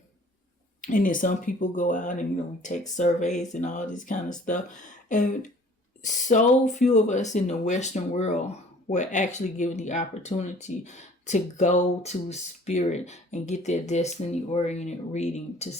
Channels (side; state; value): both; normal; correlation 0.52